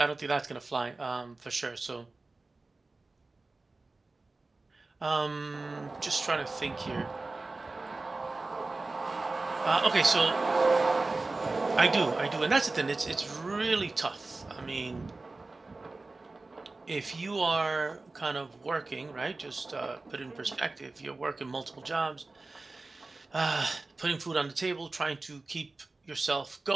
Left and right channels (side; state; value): left; quieter; 3.4 dB